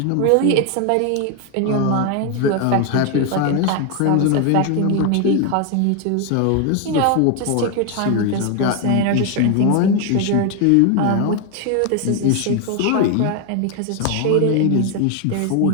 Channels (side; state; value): both; different; correlation 0.01